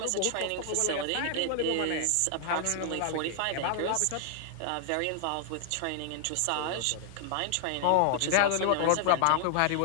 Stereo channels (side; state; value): both; different; correlation 0.00